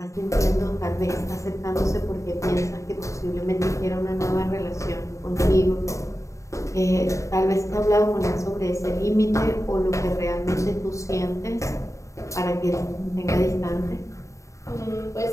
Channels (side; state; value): right; late; 0.15 ms